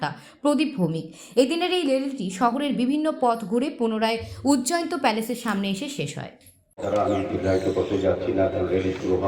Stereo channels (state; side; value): identical; both; correlation 1.00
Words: প্রদীপ ভৌমিক। এদিনের এই র্যালিটি শহরের বিভিন্ন পথ ঘুরে পুনরায় উজ্জয়ন্ত প্যালেসের সামনে এসে শেষ হয়। তারা আমি দীর্ঘায়িত করতে যাচ্ছি না, এখন র্যালি শুরু